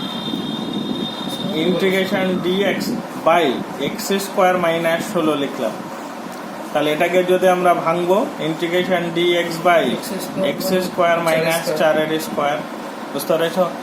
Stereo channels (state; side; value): identical; both; correlation 1.00